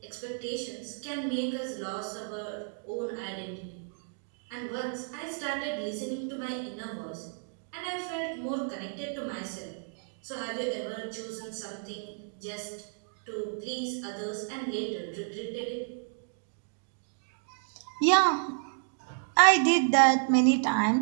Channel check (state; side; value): silent; left; digital silence